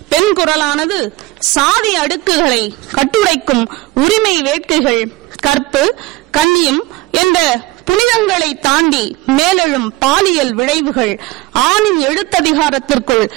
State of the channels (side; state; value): left; quieter; 19.8 dB